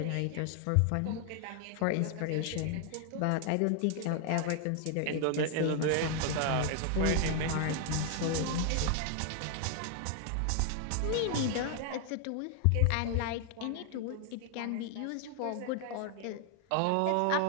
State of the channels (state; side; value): different; both; correlation 0.00